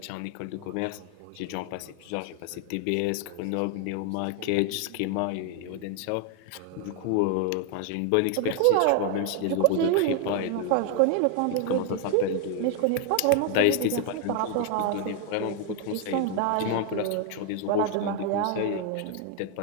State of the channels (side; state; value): both; different; correlation 0.00